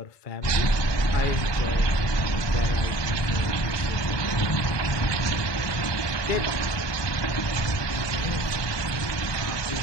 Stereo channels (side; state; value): right; late; 1.2 ms